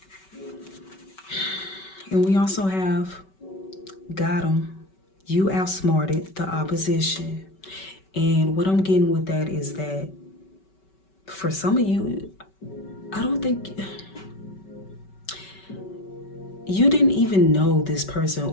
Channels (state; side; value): late; right; 5.2 ms